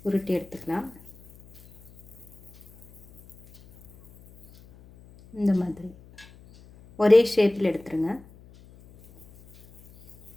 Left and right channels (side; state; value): left; noise; hum, 24 dB below the sound